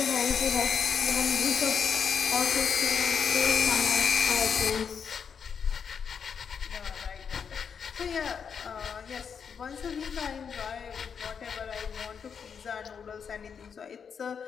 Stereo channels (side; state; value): right; quieter; 6.8 dB